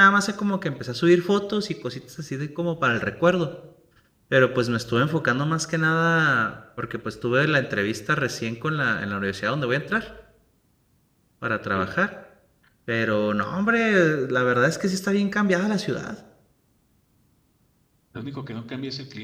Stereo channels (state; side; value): identical; both; correlation 1.00